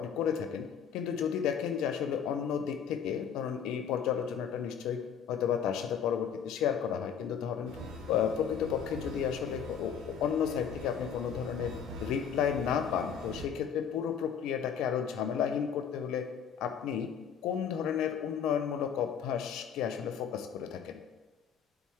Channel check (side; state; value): right; quieter; 7.6 dB